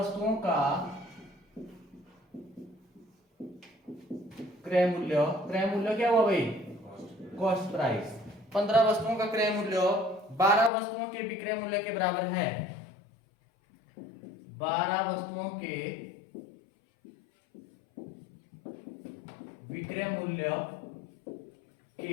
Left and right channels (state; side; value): drops out; right; at 10.7 s